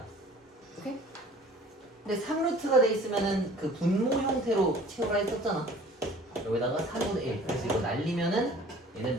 오케이? 근데 3루트가 돼 있으면은 그 분모 형태로 채우라 했었잖아. 여기다가 4분의 1. 그래서 이거 날리면은 얘는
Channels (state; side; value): normal; both; correlation 0.48